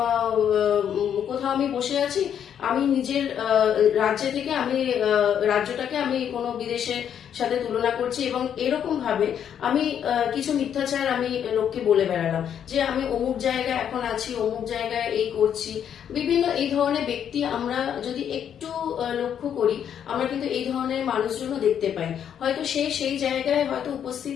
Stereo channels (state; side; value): quieter; right; 8.9 dB